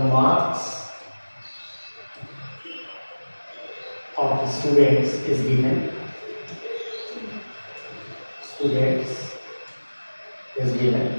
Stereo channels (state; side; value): inverted; both; correlation -1.00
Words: of students is given. Students is given.